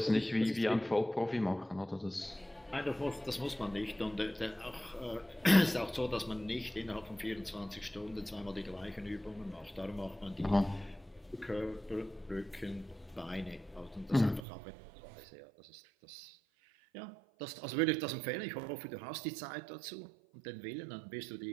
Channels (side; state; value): left; drops out; at 14.5 s